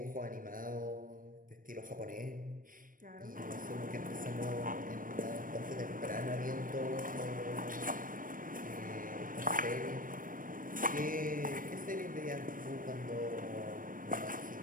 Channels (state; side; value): late; left; 0.40 ms